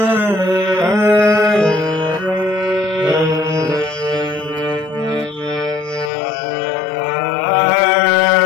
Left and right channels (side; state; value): right; drops out; at 6.1 s